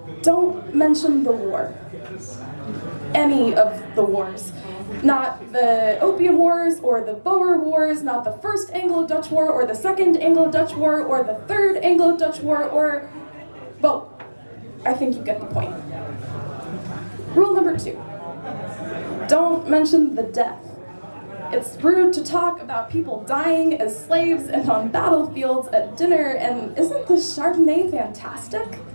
Don't mention the war. Any of the wars. Not the Opium Wars, or the Boer Wars, not the First Anglo-Dutch War, or the Second Anglo-Dutch War, or the Third Anglo-Dutch War, or... well, I think you get the point. Rule number 2. Don't mention the death. It's rude to talk about people dying as slaves and on battlefields at dinner, and isn't the Chardonnay fantastic?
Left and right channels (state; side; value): inverted; both; correlation -1.00